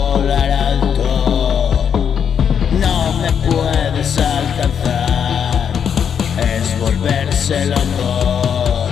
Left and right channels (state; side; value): quieter; right; 7.8 dB